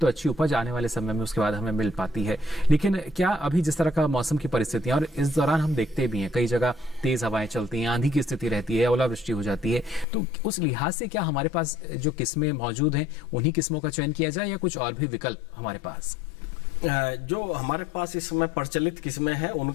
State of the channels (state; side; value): drops out; right; at 10.1 s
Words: अच्छी उपज आने वाले समय में उसके बाद हमें मिल पाती है। लेकिन क्या अभी जिस तरह का मौसम की परिस्थितियां, और इस दौरान हम देखते भी हैं कई जगह तेज हवाएं चलती हैं, आंधी की स्थिति रहती है, ओलावृष्टि हो जाती है, तो उस लिहाज से क्या हमारे पास जो किस्में मौजूद हैं उन्हीं किस्मों का चयन किया जाए या कुछ और भी विकल्प हमारे पास? जो हमारे पास इस समय प्रचलित किस्में हैं